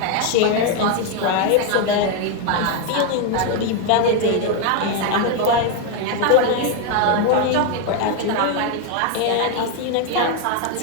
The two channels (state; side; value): different; both; correlation 0.01